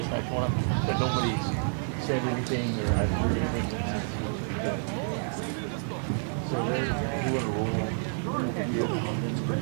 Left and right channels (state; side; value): silent; left; digital silence